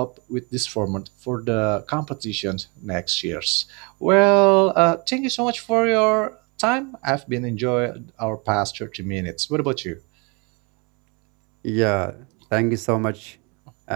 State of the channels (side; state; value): left; quieter; 31.0 dB